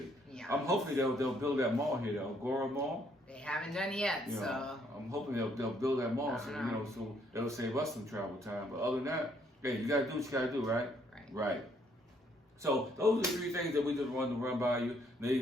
Yeah. I'm hoping they'll build that mall here, the Agora Mall. They haven't done it yet, so I'm hoping they'll build that mall, so it'll save us some travel time. But other than that, hey, you gotta do what you gotta do, right? Right. So those are the three things that we just wanted to run by you. Now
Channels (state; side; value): normal; both; correlation 0.68